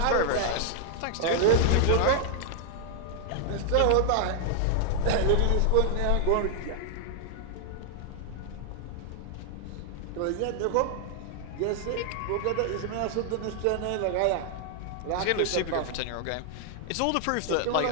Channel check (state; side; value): different; both; correlation -0.01